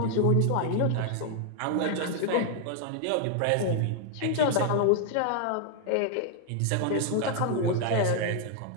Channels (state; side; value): different; both; correlation 0.00